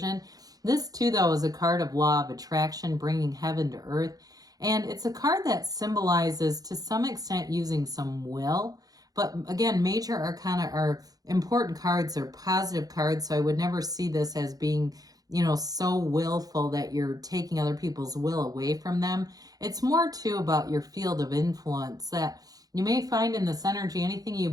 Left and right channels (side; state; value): left; late; 0.18 ms